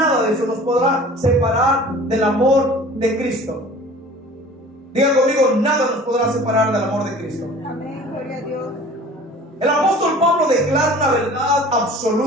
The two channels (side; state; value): both; normal; correlation 0.45